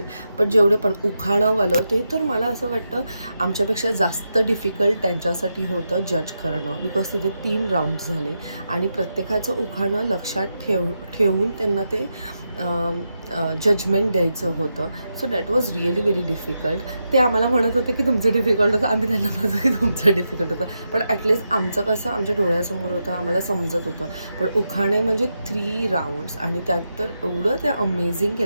पण जेवढे पण उखाणंवालं ते तर मला असं वाटतं आमच्यापेक्षा जास्त डिफिकल्ट त्यांच्यासाठी होतं जज करणं, बिकॉज तिथे 3 राऊंड्स झाले आणि प्रत्येकाचं उखाणं लक्षात ठेवून त्यांना ते जजमेंट द्यायचं होतं. So that was really very difficult. ते आम्हाला म्हणत होते की तुमचं डिफिकल्ट होतं, आम्ही त्यांना म्हणतो की तुमचं डिफिकल्ट होतं, पण ॲटलिस्ट आमचं कसं आमच्या डोळ्यासमोर होतं, आम्हाला समजत होतं. पण उखाणे म्हणजे 3 राऊंड्स आणि त्यात तर एवढं ते अमेझिंग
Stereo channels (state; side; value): inverted; both; correlation -0.86